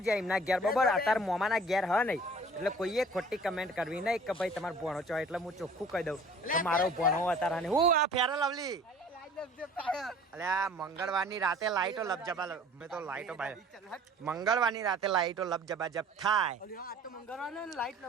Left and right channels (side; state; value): both; normal; correlation 0.49